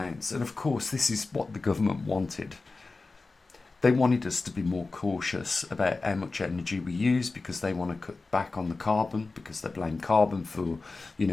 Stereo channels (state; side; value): quieter; right; 3.7 dB